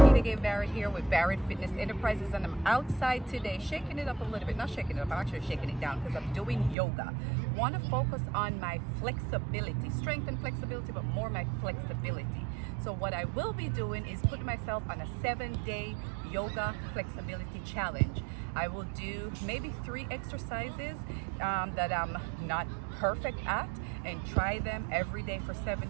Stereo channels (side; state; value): left; drops out; at 6.8 s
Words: Peter Gay Barrett here with Barrett Fitness Enterprises, and I'm outside today shaking it up a little bit. Not shaking it up, I'm actually shaking it down because I'm doing yoga. Want to focus on my flexibility, strength and flexibility, but more my flexibility. So what I will be doing is putting myself on a 7-day yoga flexibility challenge. I will do maybe 3 exercises that I'm not perfect at, and try them every day for